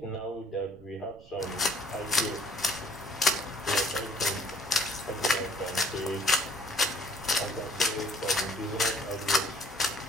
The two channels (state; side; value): noise; right; rumble, 24 dB below the sound